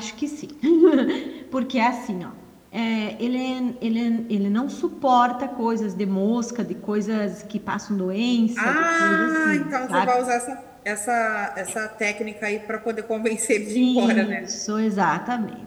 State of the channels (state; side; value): identical; both; correlation 1.00